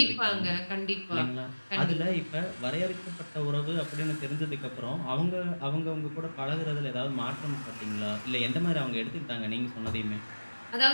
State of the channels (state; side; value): inverted; both; correlation -1.00